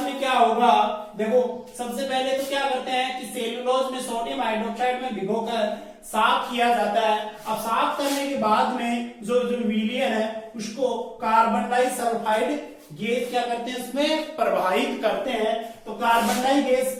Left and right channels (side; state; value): both; identical; correlation 1.00